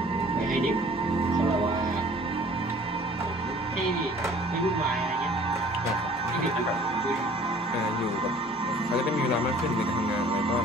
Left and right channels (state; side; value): normal; both; correlation 0.52